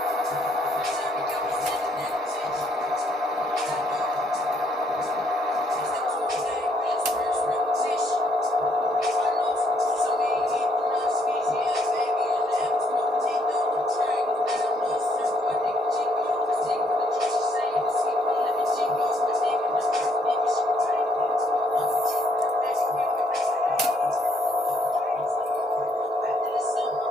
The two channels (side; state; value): both; normal; correlation 0.70